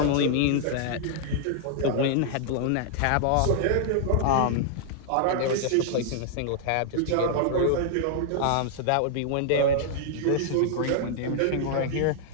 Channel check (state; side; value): different; both; correlation -0.01